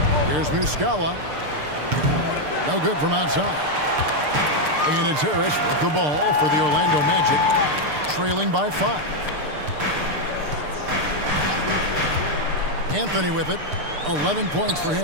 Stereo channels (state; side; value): late; left; 6.7 ms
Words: Here's Muscala. No good from outside. And it's Harris with the ball for the Orlando Magic, trailing by 5. Anthony with it. 11 points for